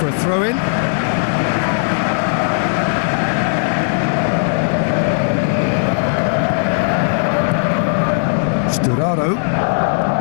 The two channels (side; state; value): right; silent; digital silence